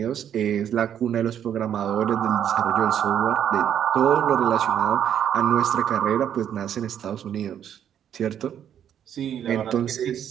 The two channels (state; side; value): quieter; left; 9.5 dB